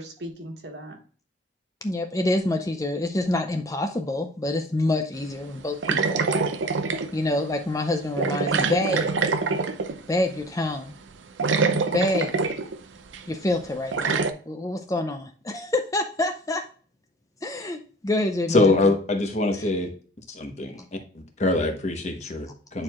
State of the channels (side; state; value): both; normal; correlation 0.43